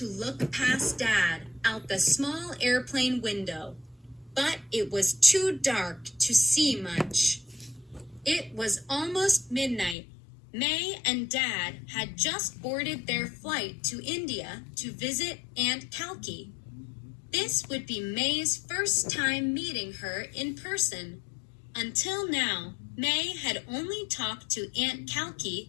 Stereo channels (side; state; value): right; drops out; at 10.0 s